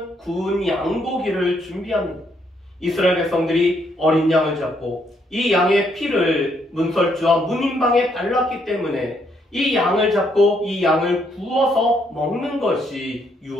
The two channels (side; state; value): both; normal; correlation 0.73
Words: 구운 양고기를 준비합니다. 이스라엘 백성들이 어린 양을 잡고 이 양의 피를 문설주와 문인방에 발랐기 때문에 이 양을 잡고 이 양을 구워서 먹는 것이